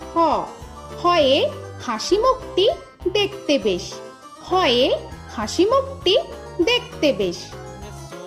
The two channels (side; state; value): both; identical; correlation 1.00